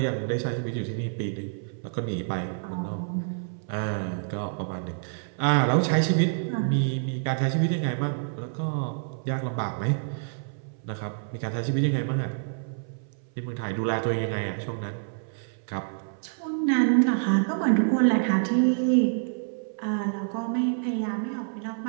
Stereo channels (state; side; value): silent; left; 60 dB below the other